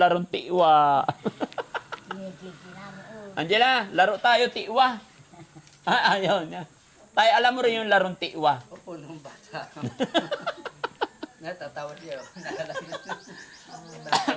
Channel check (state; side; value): identical; both; correlation 1.00